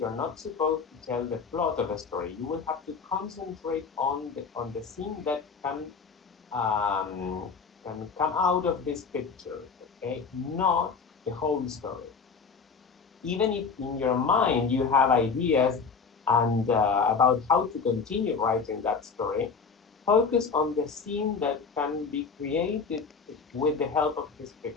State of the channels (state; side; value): quieter; right; 5.3 dB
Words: not supposed to tell the plot of a story. You will have to concentrate on the scene that can come out of this picture, okay, not the whole story. Even if in your mind you have ideas and about how to continue writing that story, focus on the scene that can be created with the help of this